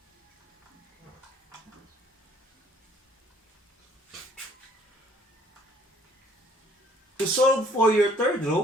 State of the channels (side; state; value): both; normal; correlation 0.60